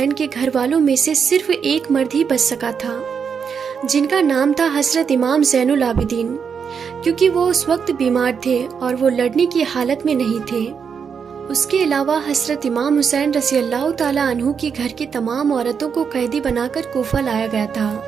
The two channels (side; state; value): left; quieter; 6.5 dB